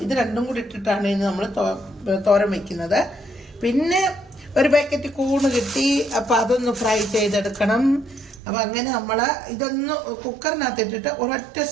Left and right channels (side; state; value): left; drops out; at 8.4 s